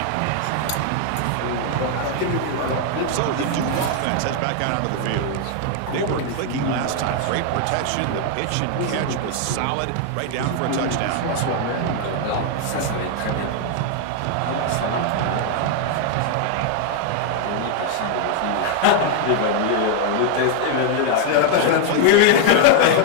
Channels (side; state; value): both; different; correlation 0.00